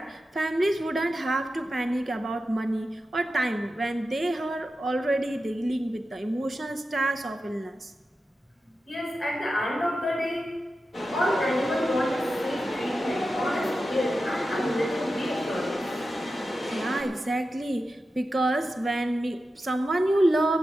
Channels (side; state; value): both; normal; correlation 0.92